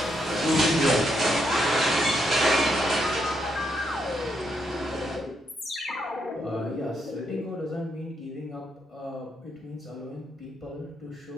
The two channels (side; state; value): both; normal; correlation 0.78